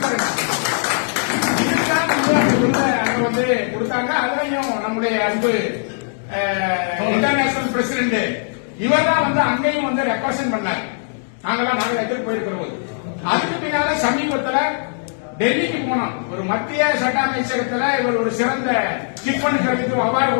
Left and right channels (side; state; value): right; silent; digital silence